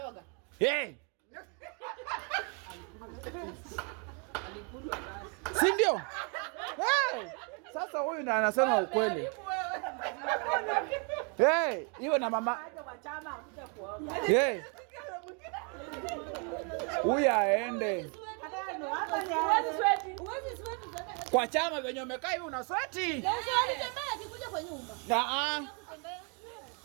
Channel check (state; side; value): quieter; left; 36.5 dB